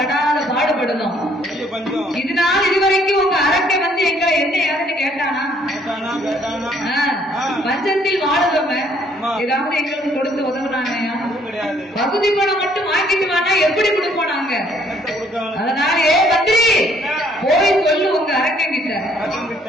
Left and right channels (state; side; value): normal; both; correlation 0.64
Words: பாடுபடுதோம். இதனால் இதுவரைக்கும் உங்க அரக்கன் வந்து எங்களை என்ன யாருன்னு கேட்டானா? பஞ்சத்தில் வாழுவங்க ஏதாவது எங்களுக்கு கொடுத்து உதவுனாங்க? பகுதி பணம் மட்டும் வாங்கிட்டு வானா எப்படி கொடுப்போம் நாங்க? அதனால ஏ மந்திரி, போய் சொல்லு உங்க அரக்கன் கிட்ட,